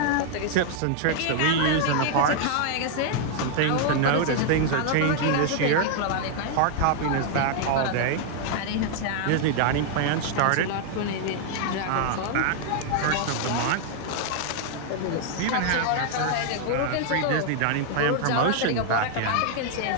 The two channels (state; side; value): different; both; correlation 0.00